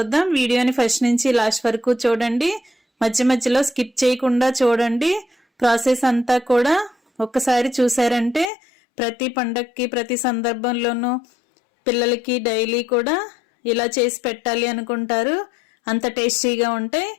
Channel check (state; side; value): drops out; right; at 8.5 s